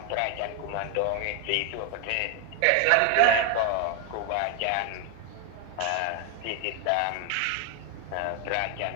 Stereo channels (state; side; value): different; both; correlation 0.01